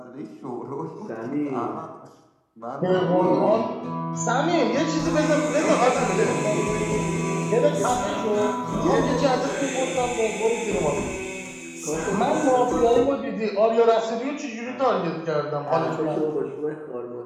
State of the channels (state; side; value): identical; both; correlation 1.00